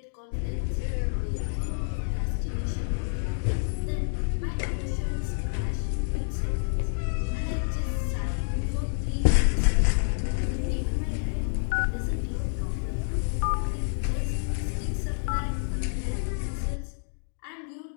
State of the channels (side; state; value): right; silent; digital silence